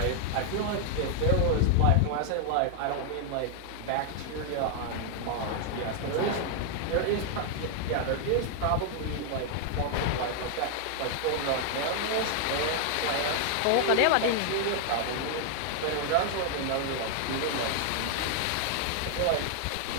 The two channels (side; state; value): both; different; correlation 0.00